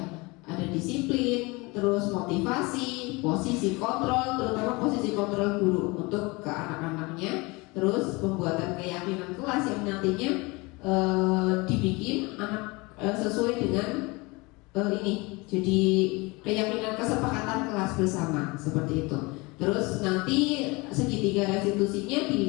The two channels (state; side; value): quieter; right; 25.2 dB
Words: ada disiplin, terus motivasi, posisi kontrol, terutama posisi kontrol guru untuk ke anak-anaknya. Terus pembuatan keyakinan kelas yang nantinya dibikin anak sesuai dengan ini, jadi keyakinan kesepakatan kelas bersama seperti itu. Terus nanti segitiga restitusinya